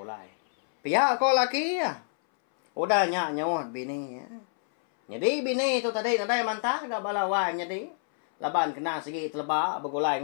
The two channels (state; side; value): silent; right; 60 dB below the other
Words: Pia ko laki ya. Udah nyak nyawat bini ya. Jadi bini tu tadi nadai mantah gak balawan jadi. Laban kena segi teleba begulai